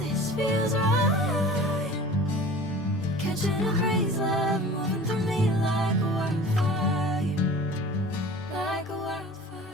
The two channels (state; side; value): normal; both; correlation 0.42